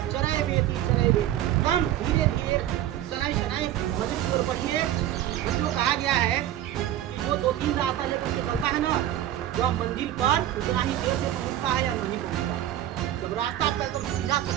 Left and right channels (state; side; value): quieter; left; 12.4 dB